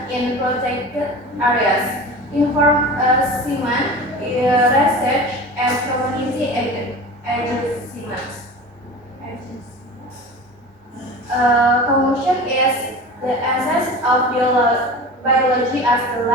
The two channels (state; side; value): normal; both; correlation 0.34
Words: in protected areas, enforcement, research, and community engagement. Conclusion is the essence of biology as the